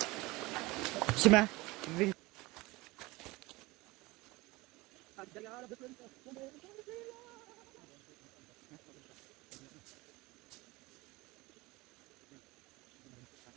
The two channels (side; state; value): left; quieter; 22.1 dB